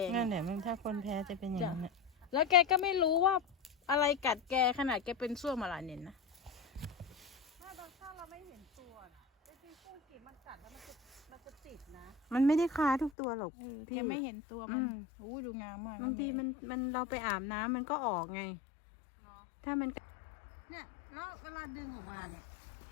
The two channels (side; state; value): right; drops out; at 13.1 s